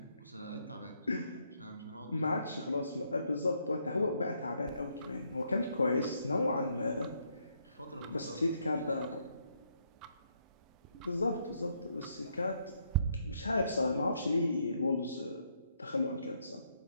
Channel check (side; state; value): both; inverted; correlation -0.73